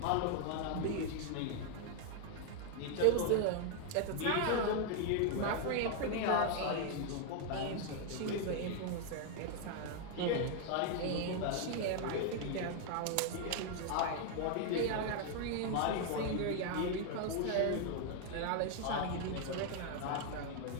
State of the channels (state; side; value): different; both; correlation 0.00